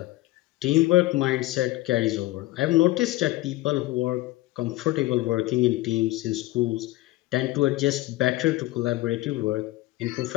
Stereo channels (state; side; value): quieter; right; 18.3 dB